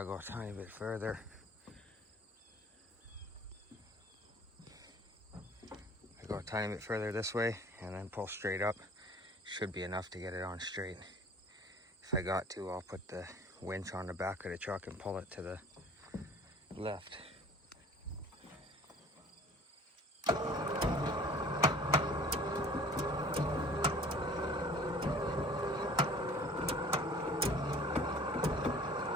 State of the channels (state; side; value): normal; both; correlation 0.48